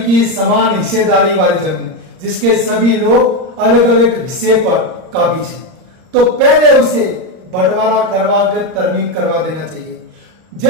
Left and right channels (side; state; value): left; late; 38 ms